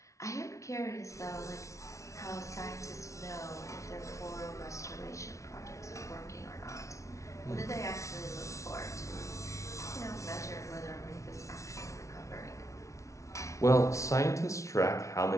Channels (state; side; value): late; right; 0.14 ms